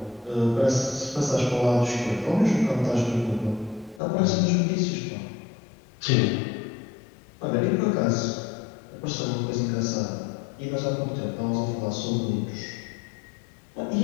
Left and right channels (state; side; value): drops out; right; at 4.0 s